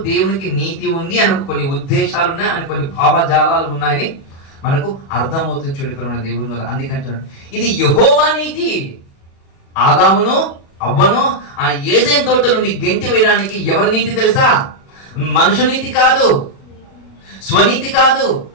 దేవునికి నీతి ఉంది అని కొన్ని ఉద్దేశాలు ఉన్నాయి, అని కొన్ని భావజాలాలు ఉన్నాయని మనకు అర్థమవుతుంది. చూడండి ప్రేమ దేవుని వల్ల. అందుకంటున్నాడు ఇది యెహోవా నీతి. ఆదామును అవ్వను ఆ ఏదైనా తోట నుండి గెంటి వేయడానికి ఎవరి నీతి తెలుసా? మనుషు నీతి కాదు, స్వనీతి కాదు,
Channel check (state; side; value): late; right; 37 ms